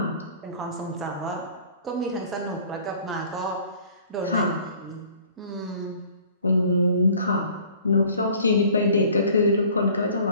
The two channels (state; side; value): inverted; both; correlation -0.51